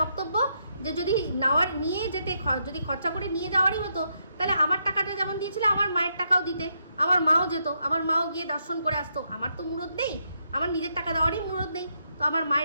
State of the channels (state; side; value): inverted; both; correlation -0.78